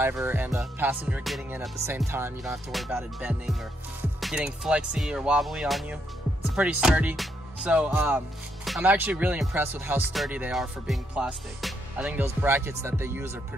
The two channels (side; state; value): both; normal; correlation 0.77